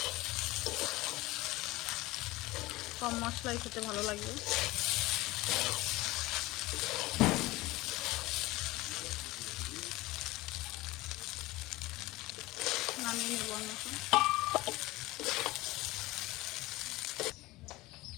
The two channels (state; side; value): quieter; right; 19.7 dB